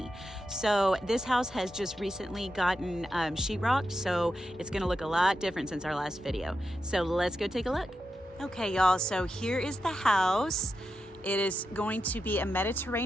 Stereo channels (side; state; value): both; normal; correlation 0.88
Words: So this house has just recently gotten sheetrock, so it's gonna look a lot different since our last video. So let's go take a look. Okay y'all, so here is the house. It is going to be a